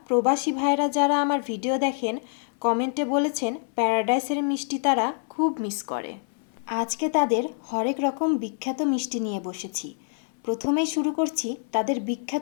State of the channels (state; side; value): silent; right; 59 dB below the other